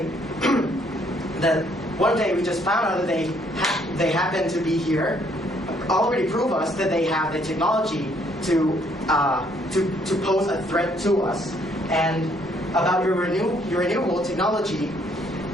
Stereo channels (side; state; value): both; normal; correlation 0.67